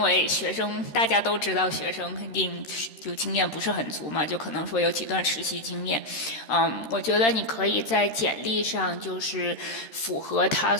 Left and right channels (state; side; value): late; right; 13 ms